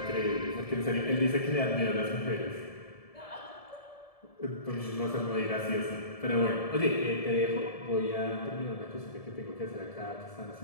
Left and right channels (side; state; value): right; late; 1.7 ms